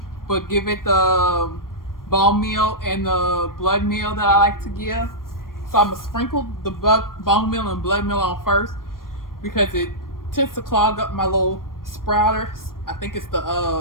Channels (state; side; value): late; right; 0.91 ms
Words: but give it the bone meal and the blood meal that I like to give. So I'm going to sprinkle the bone meal and blood meal on first because it tends to clog up my little sprouters. I think it's